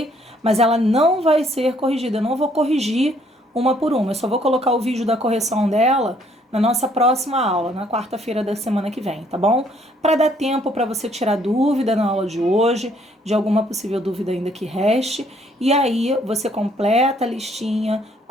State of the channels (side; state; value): both; normal; correlation 0.65